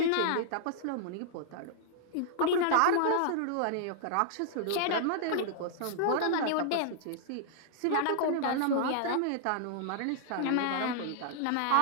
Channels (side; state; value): both; different; correlation -0.01